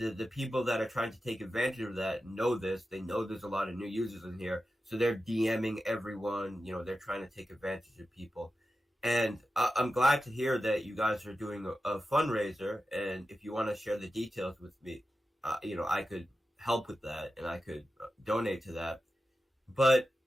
people that are trying to take advantage of that know this. They know there's a lot of new users in here, so they're DMing everyone. They're trying to take advantage of people. And I'm glad to hear that you guys are doing a fundraiser. And if you want to share the details with me, I could help with that and I could donate to that. But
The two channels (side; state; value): both; normal; correlation 0.92